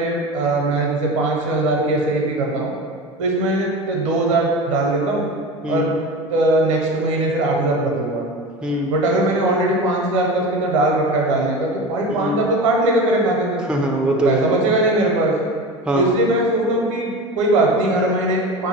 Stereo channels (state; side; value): normal; both; correlation 0.30